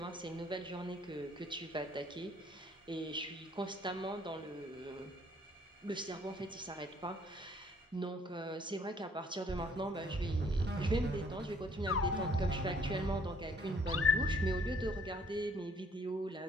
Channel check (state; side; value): normal; both; correlation 0.62